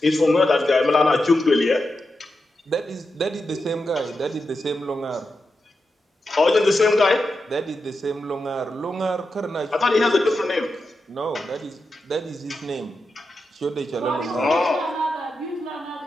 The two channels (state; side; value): normal; both; correlation 0.88